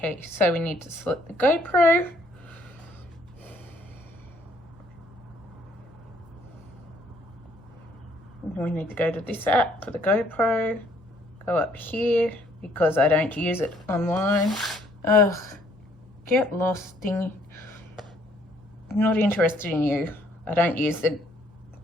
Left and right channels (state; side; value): normal; both; correlation 0.64